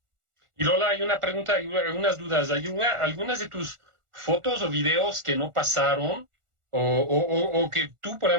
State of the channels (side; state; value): left; late; 1.4 ms